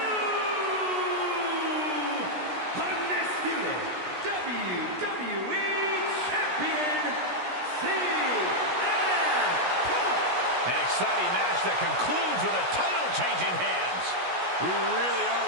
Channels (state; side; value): late; left; 16 ms